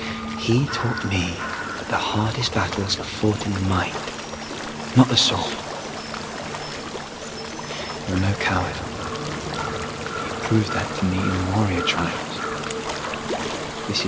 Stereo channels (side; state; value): both; identical; correlation 1.00